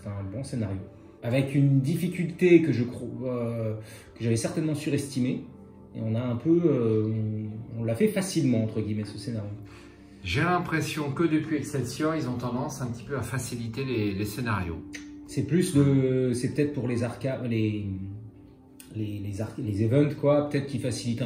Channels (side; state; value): both; identical; correlation 1.00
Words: un bon scénario. Avec une difficulté que je crois que j'avais certainement surestimée. Et on a un peu... on l'a fait facilement, entre guillemets, ce scénario. J'ai l'impression que depuis Excelsior, ils ont tendance un petit peu à faciliter les scénarios. C'est plus de... C'est peut-être pour les arcades... Les events, quoi, peut-être qui facilitent